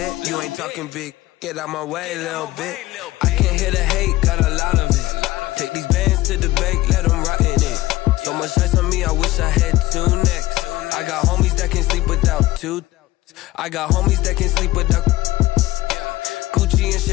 You ain't talking big. Get out my way, little bit. I can't hear the hate, got a lot of it. Take these bands to the bank, let them rot in it. So much ice on me, I wish I had 2 necks. I got homies that can sleep without 2. I got homies that can sleep without Gucci and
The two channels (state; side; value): quieter; right; 17.2 dB